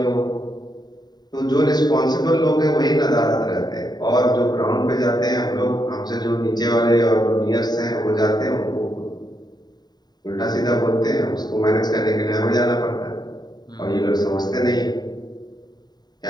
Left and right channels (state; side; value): late; right; 0.20 ms